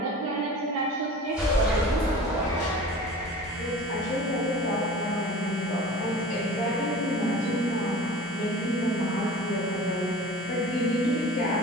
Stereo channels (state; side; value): normal; both; correlation 0.39